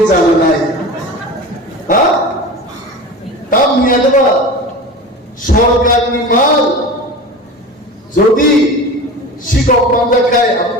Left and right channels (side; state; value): both; normal; correlation 0.31